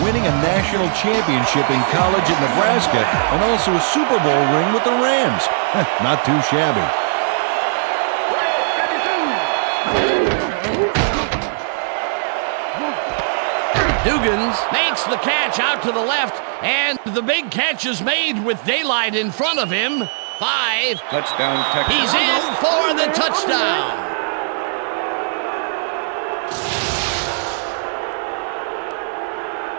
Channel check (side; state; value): left; silent; 67 dB below the other